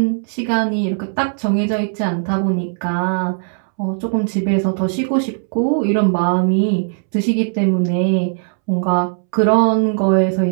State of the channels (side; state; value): left; silent; 67 dB below the other